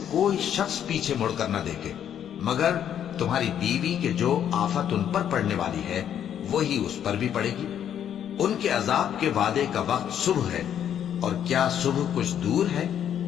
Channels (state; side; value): quieter; right; 9.6 dB